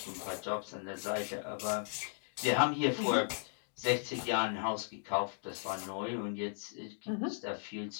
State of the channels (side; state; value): right; silent; digital silence